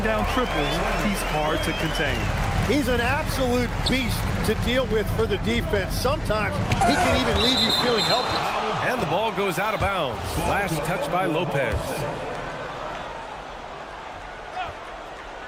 down triples, he's hard to contain. He's an absolute beast to deal with for the defense. Sometimes he can even leave you feeling helpless. And the ball goes out of bounds. Last touch by Lopez.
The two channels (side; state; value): both; identical; correlation 1.00